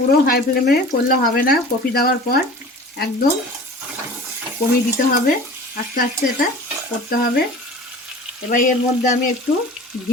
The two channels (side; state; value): both; normal; correlation 0.41